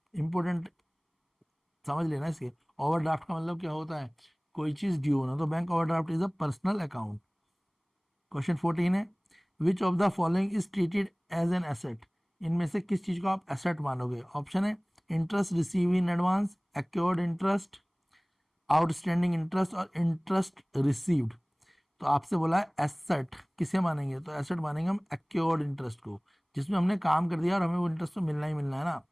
इंपॉर्टेंट समझ लेना इसके, ओवरड्राफ्ट का मतलब क्या होता है, कोई चीज़ ड्यू होना, तो bank overdraft is a personal account. Question 14 है, which of the following is treated as an asset, इनमें से किस चीज़ को आप एसेट मानोगे। ऑप्शन है interest receive in advance, accrued interest, outstanding interest और इंटरेस्ट रिसीव्ड। तो आपसे बोला है एसेट किसे मानेंगे, तो एसेट मानेंगे हम एक्योर्ड इंटरेस्ट को, जिसमें हमने काम कर दिया और हमें वो इंटरेस्ट तो मिलना ही मिलना है ना,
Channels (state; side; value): identical; both; correlation 1.00